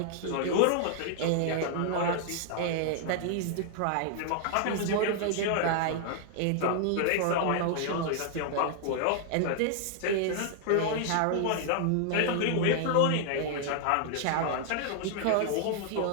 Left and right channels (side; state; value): both; different; correlation 0.00